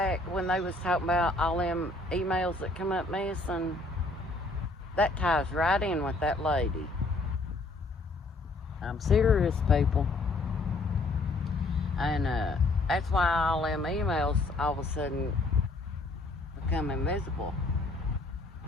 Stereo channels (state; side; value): quieter; right; 3.0 dB